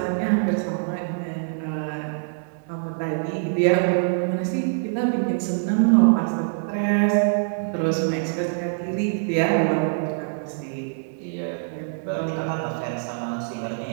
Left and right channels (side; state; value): left; silent; digital silence